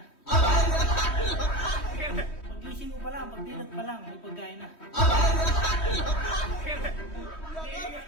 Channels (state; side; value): late; right; 3.1 ms